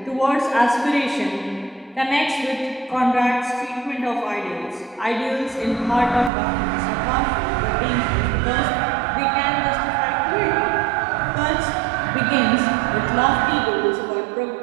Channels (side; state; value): left; drops out; at 6.3 s